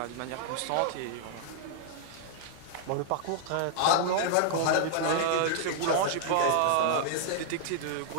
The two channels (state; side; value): different; both; correlation -0.01